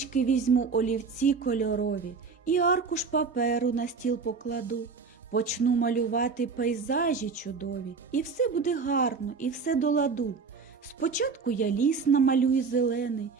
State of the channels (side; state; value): left; quieter; 5.0 dB